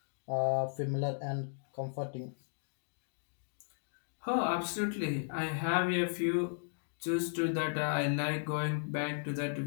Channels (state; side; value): silent; right; digital silence